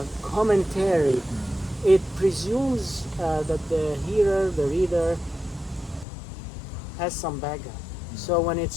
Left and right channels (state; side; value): drops out; right; at 6.1 s